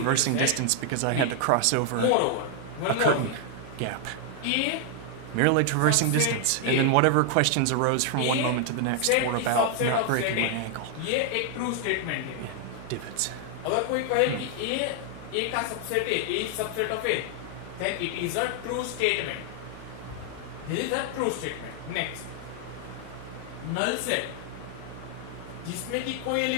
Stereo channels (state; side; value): different; both; correlation 0.00